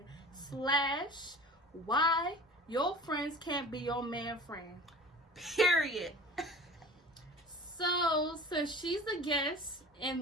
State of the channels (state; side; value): normal; both; correlation 0.40